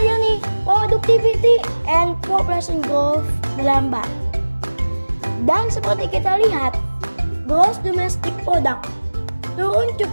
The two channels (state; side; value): inverted; both; correlation -1.00